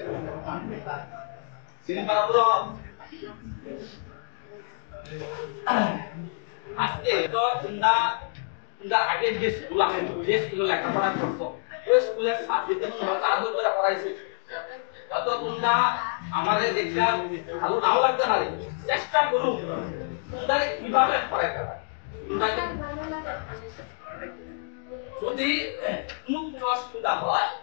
সিলভারপুর আজকে তো তোমরা আগে যে স্কুলে লেখাপড়া করছো ওই স্কুলের সাবজেক্টে কিভাবে আদর করে পড়াইছে যত তোমরা আমাদের দেখলা ভালো নাও লাগতে পারে চেষ্টা করো তোমরা কিভাবে পড়াইতে পারে যদি মুক্ত সুবিধা হয়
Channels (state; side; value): silent; right; digital silence